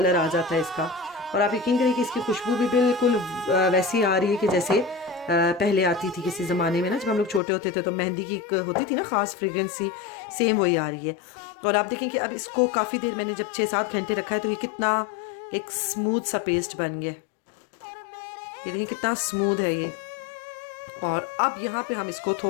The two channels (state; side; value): drops out; right; at 7.4 s